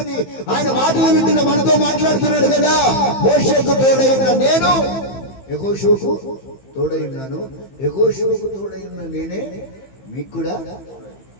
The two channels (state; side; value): late; right; 15 ms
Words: ఆయన మాటలు వింటున్న మనతో మాట్లాడుతున్నాడు కదా. మోషేకు తోడై ఉన్న నేను యెహోషువకు తోడై ఉన్నాను, యెహోషువకు తోడై ఉన్న నేనే మీకు కూడా.